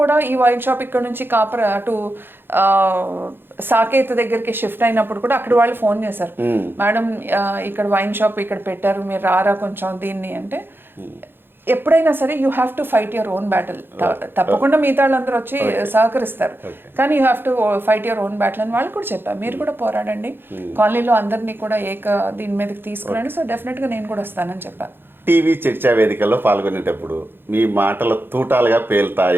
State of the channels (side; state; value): left; late; 0.10 ms